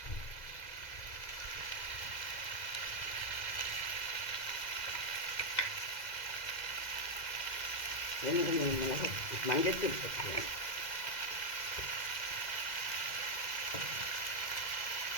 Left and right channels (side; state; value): right; late; 2.0 ms